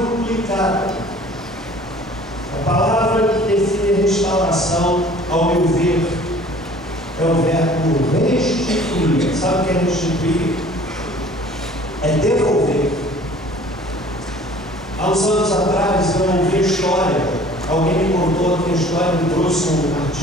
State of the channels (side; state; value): both; normal; correlation 0.50